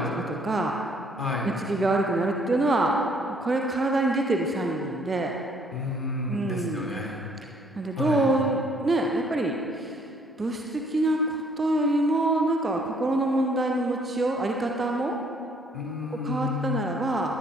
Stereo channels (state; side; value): normal; both; correlation 0.63